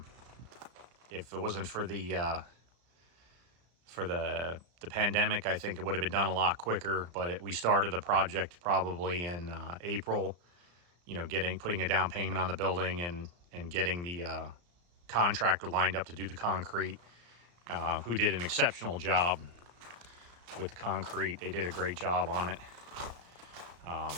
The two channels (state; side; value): late; left; 34 ms